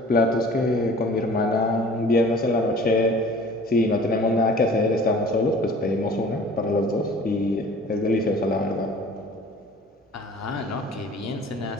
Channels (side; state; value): both; normal; correlation 0.48